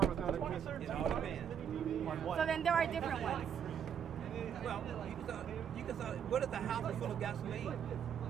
without a kiss. It all depends. So then there are different ones. Well, you can say, what if the house is full of gasoline?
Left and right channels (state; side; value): quieter; left; 8.3 dB